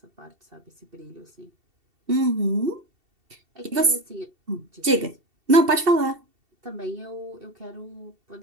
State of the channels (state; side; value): late; left; 2.7 ms